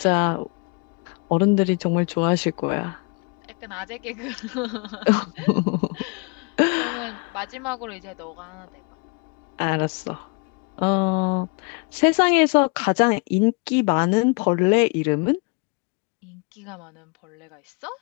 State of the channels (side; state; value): right; quieter; 32.1 dB